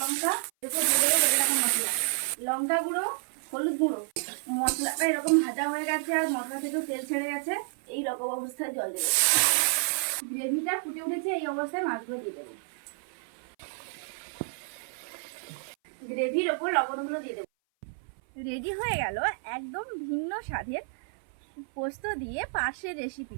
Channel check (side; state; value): left; silent; 56 dB below the other